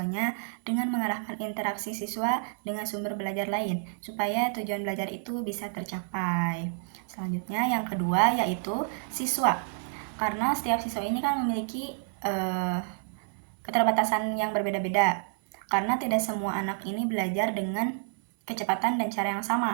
dengan mengarahkan interaksi siswa dengan sumber belajar lain, supaya tujuan belajar itu bisa tercapai. Selanjutnya, yang kedua yaitu siswa. Karena setiap siswa ini kan memiliki keterbatasan yang berbeda-beda. Karena tidak semua anak ini belajar dengan kecepatan dan cara yang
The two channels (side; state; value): left; silent; 58 dB below the other